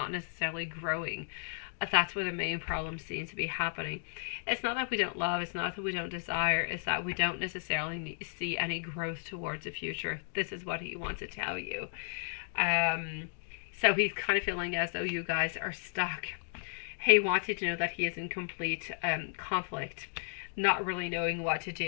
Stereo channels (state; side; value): silent; right; digital silence